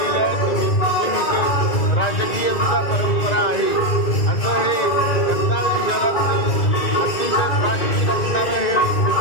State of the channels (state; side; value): late; right; 1.9 ms